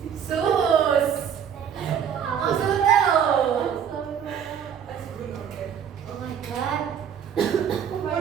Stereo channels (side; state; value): left; quieter; 8.2 dB